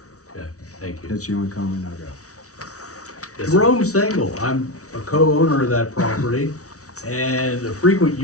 Okay, thank you. That's the only comment I got. Yes, sir. Jerome Sengel, I'm a co-owner of that property and a frequent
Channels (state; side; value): late; right; 0.66 ms